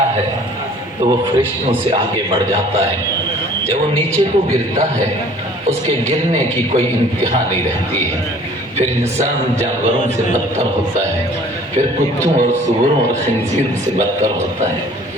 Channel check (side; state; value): both; normal; correlation 0.52